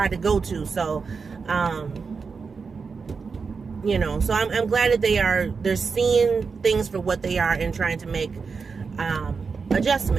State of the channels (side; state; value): left; quieter; 5.1 dB